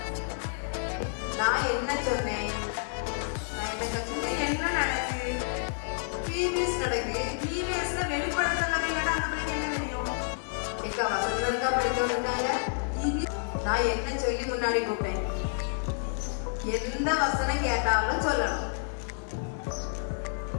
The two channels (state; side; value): silent; right; digital silence